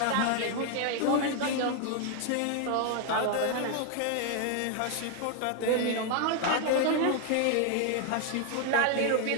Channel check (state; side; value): different; both; correlation 0.00